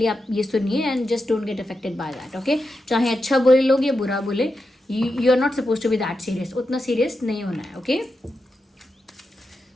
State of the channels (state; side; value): normal; both; correlation 0.88